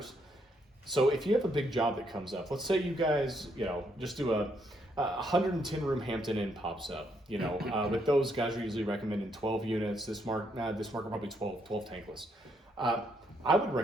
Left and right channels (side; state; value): both; normal; correlation 0.74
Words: So if you have a big job that comes up, let's say you guys, you know, just do a 110 room Hampton Inn pops up. You know, with those guys are usually recommending 12 units. This market probably 12 tankless. I would